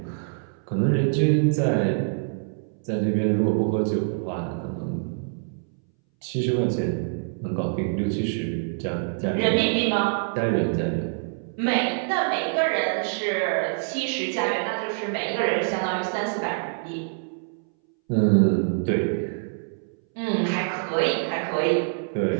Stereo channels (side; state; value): left; silent; 61 dB below the other